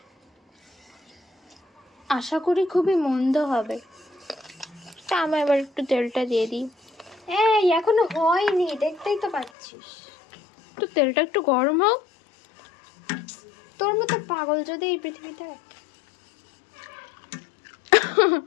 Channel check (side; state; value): right; drops out; at 9.5 s